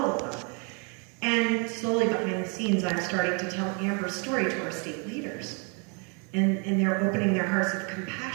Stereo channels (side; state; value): left; quieter; 35.9 dB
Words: of them. And slowly behind the scenes, I'm starting to tell Amber's story to our state leaders. And they're opening their hearts of